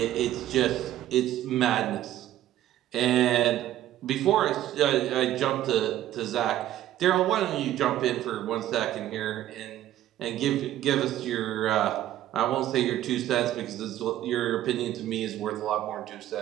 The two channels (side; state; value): left; quieter; 13.1 dB